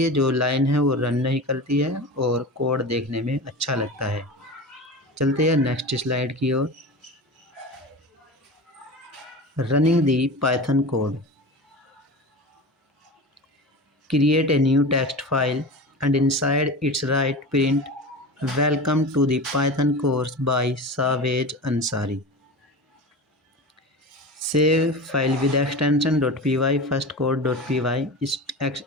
जो लाइन है वो रन नहीं करती है और कोड देखने में अच्छा लगता है। चलते हैं नेक्स्ट स्लाइड की ओर। Running the Python code. Create a new text file and inside its write print welcome to the Python course by Savage Ansari। Save file with extension .py firstcode.py,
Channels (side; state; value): both; normal; correlation 0.30